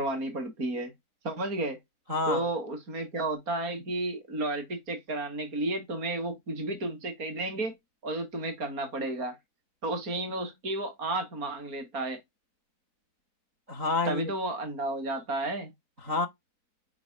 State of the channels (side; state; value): left; late; 3.9 ms